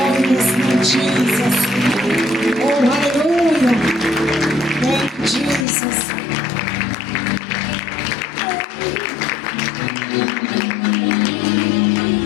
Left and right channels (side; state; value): right; drops out; at 5.7 s